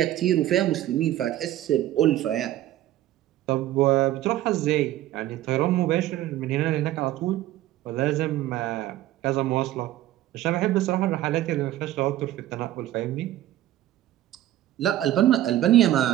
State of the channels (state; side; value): quieter; left; 14.0 dB